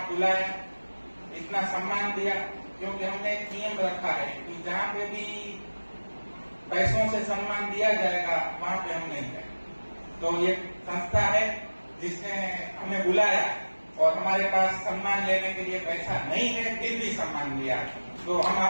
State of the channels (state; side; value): inverted; both; correlation -1.00